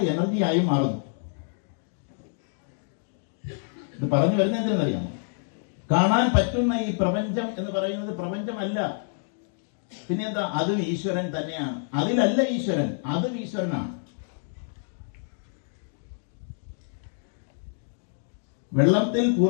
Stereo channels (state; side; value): silent; right; digital silence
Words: എനർജിയായി മാറുന്നു. ഇത് പറഞ്ഞു വരുന്നത് എന്തിനെന്നറിയാമോ? കാണാൻ പറ്റുന്ന ഈ പ്രപഞ്ചം എന്ന് പറയുന്നത് പ്രപഞ്ചമല്ല, പിന്നെന്താ? അതും ഈശ്വരൻ തന്നെയാണ്. അതിലല്ല ഈശ്വരൻ, അതും ഈശ്വരനാണ്. വെള്ളത്തിൽ